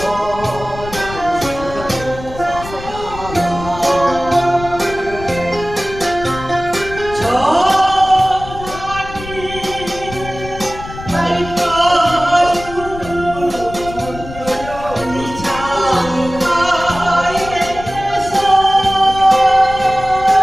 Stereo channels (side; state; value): left; noise; rumble, 13 dB below the sound